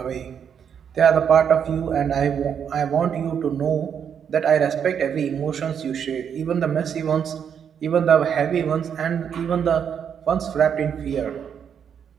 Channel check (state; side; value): quieter; left; 7.9 dB